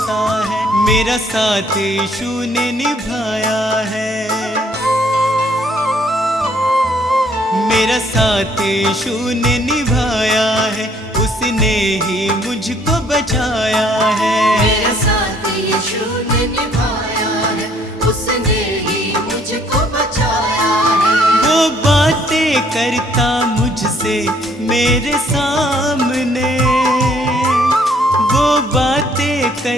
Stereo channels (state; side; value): normal; both; correlation 0.63